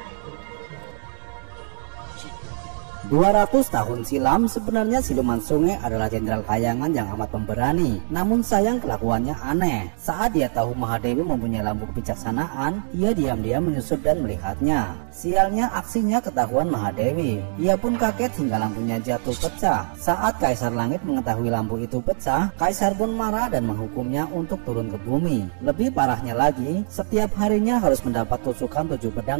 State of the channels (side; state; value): left; silent; digital silence